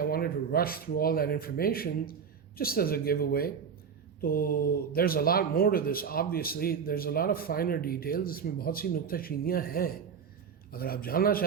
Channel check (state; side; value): quieter; left; 6.7 dB